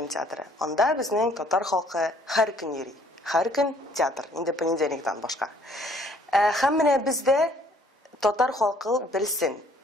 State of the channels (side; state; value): both; normal; correlation 0.60